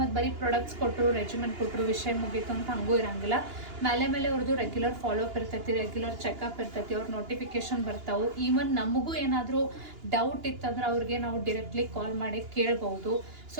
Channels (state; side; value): late; left; 2.9 ms